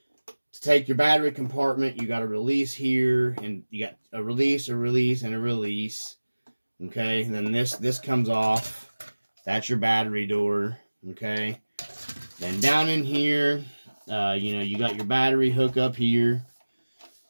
To take your battery compartment, you got a release here, and you got a release, and a release. Okay, and then this comes off. That's your battery door. Okay, then down in here, you got your battery hook up here.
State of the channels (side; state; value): both; inverted; correlation -1.00